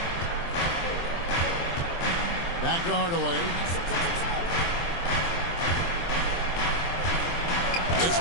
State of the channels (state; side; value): late; right; 23 ms